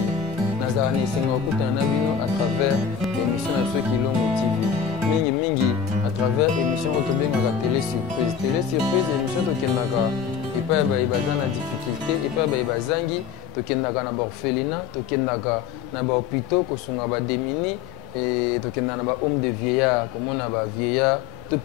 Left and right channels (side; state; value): right; quieter; 7.3 dB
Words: nazala na esenga okutana na bino à travers émission na biso Kilongo TV mingi à travers émission oyo tobengaka télé surprise émission tokendaka epai baye baza na difficulté epai baye bazangi tokendaka na baorphelinat tokendaka na bahôpitaux kosunga badémini tokendaka na bahomme de vieillard komona bavieillard to